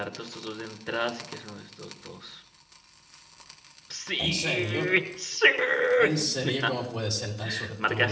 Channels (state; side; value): identical; both; correlation 1.00